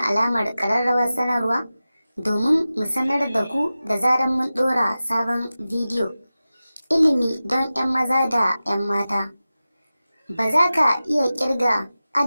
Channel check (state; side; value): inverted; both; correlation -0.95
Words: alamar ƙararrawar sanarwa domin mu sanar da ku da zarar mun ɗora sabon bidiyo. Ilimi don 'yan maza da 'yan mata. Ba za ka iya ƙirga